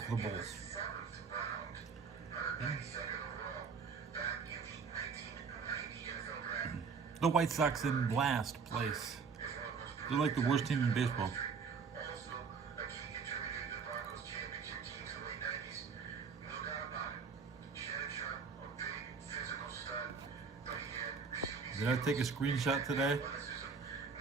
the Bulls? The White Sox in last place. They're like the worst team in baseball. Did I take a screenshot today?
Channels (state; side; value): quieter; left; 5.4 dB